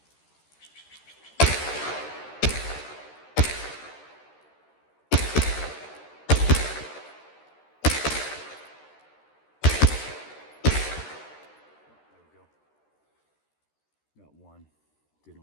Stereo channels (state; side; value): late; right; 13 ms